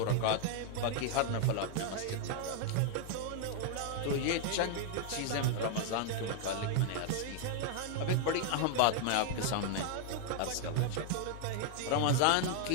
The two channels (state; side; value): different; both; correlation 0.00